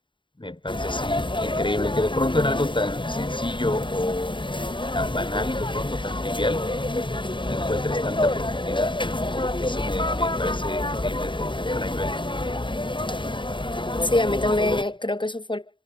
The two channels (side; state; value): right; late; 0.23 ms